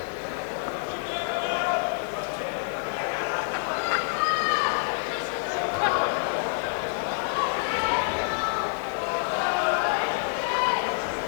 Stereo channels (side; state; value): right; silent; 55 dB below the other